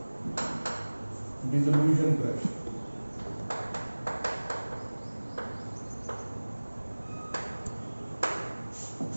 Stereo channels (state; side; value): inverted; both; correlation -1.00